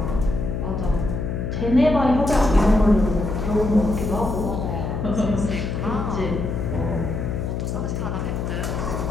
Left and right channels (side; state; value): left; noise; hum, 3 dB below the sound